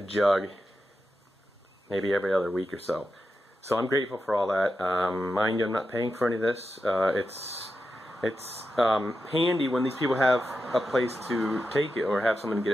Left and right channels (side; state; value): both; normal; correlation 0.89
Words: maybe every other week or so. So I'm grateful for all that. Mind you, I'm not paying for any of this. It's handy when these people have a place to take it or have someone get